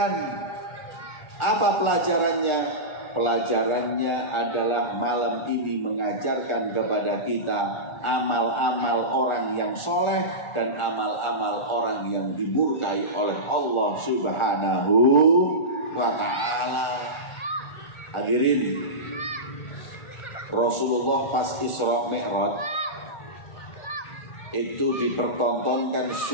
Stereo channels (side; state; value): right; late; 1.4 ms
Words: Apa pelajarannya? Pelajarannya adalah malam ini mengajarkan kepada kita amal-amal orang yang soleh dan amal-amal orang yang dimurkai oleh Allah Subhanahu wa ta'ala. Hadirin, Rasulullah pas Isra Mi'raj itu dipertontonkan